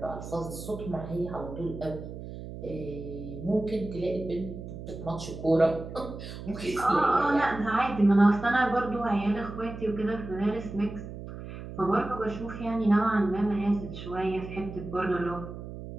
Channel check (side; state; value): right; noise; hum, 10 dB below the sound